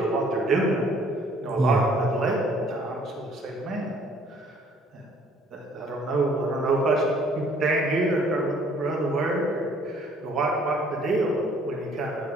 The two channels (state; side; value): normal; both; correlation 0.59